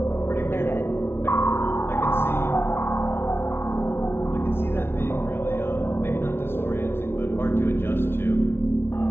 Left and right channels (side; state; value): right; late; 0.12 ms